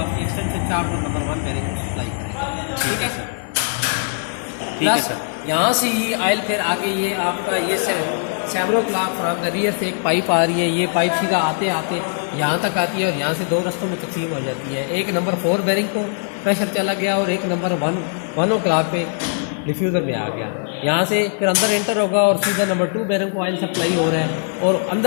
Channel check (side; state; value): right; silent; digital silence